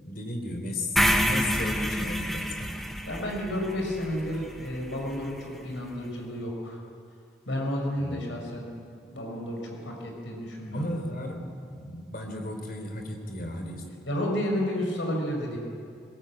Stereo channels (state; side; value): normal; both; correlation 0.74